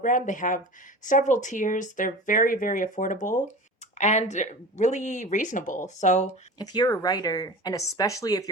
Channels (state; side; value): normal; both; correlation 0.34